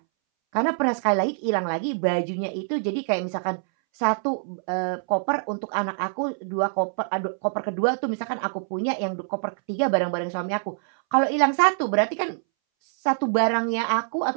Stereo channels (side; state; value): left; silent; 62 dB below the other